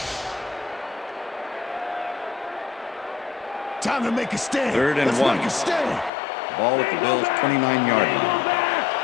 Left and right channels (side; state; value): right; drops out; at 6.1 s